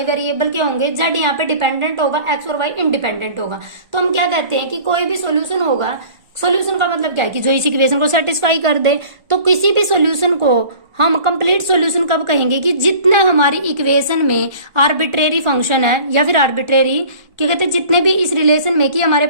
वेरिएबल के होंगे, जेड यहाँ पे डिपेंडेंट होगा, एक्स और वाई इंडिपेंडेंट होगा। तो हम क्या कहते हैं कि कोई भी सॉल्यूशन होगा, सॉल्यूशन का मतलब क्या है कि जो इस इक्वेशन को सेटिस्फाई कर दे। तो किसी भी सॉल्यूशन को हम कंप्लीट सॉल्यूशन कब कहेंगे कि जितने हमारी इक्वेशन में आर्बिट्रेरी फंक्शन है या फिर आर्बिट्रेरी क्या कहते हैं, जितने भी इस रिलेशन में कि हमारे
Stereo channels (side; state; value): left; late; 1.4 ms